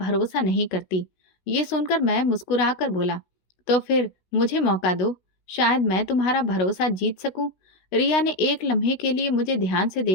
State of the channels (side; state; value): right; late; 16 ms